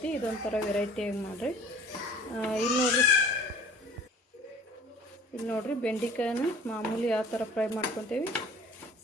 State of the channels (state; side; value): normal; both; correlation 0.48